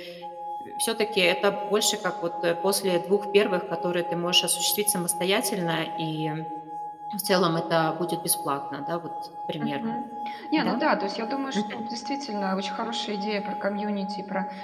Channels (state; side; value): identical; both; correlation 1.00